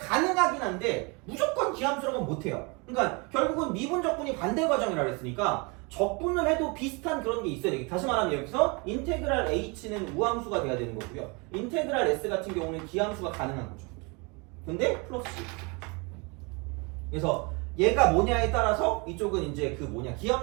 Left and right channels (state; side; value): quieter; left; 29.8 dB